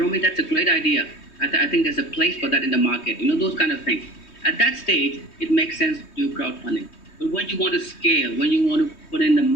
that's a great idea. I think there's a place for that in the market. Those kind of things. At that stage, it makes sense to do crowdfunding. But when you want to scale, when you want to put in the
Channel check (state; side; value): late; right; 3.2 ms